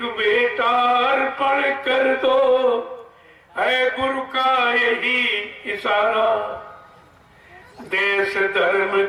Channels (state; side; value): identical; both; correlation 1.00